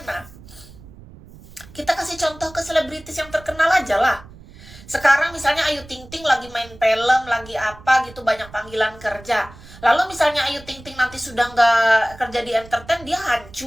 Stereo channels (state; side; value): noise; right; rumble, 20 dB below the sound